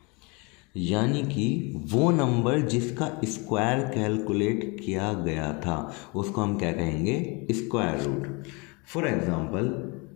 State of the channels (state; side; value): quieter; right; 29.2 dB